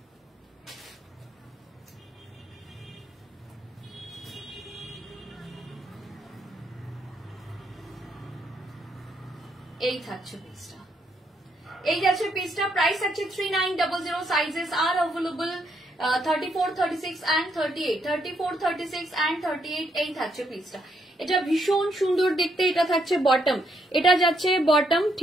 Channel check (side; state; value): both; normal; correlation 0.75